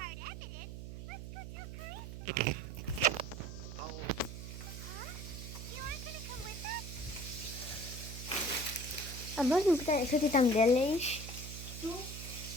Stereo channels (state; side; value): noise; right; hum, 9 dB below the sound